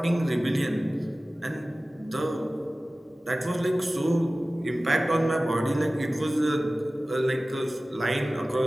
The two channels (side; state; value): both; normal; correlation 0.97